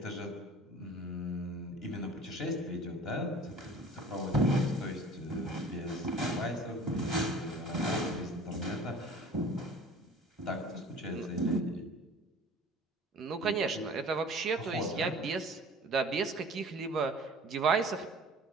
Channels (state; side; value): normal; both; correlation 0.45